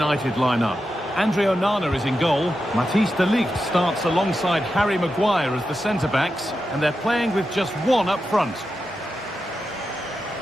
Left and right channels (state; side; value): normal; both; correlation 0.89